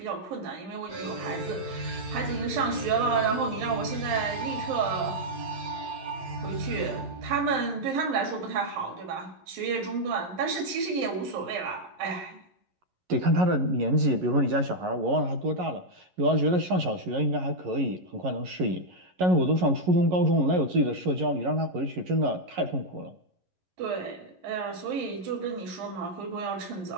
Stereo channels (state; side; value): late; left; 11 ms